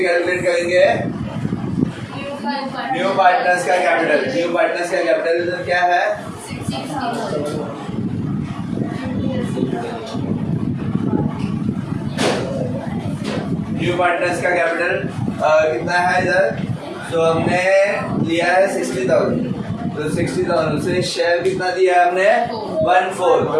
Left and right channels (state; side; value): identical; both; correlation 1.00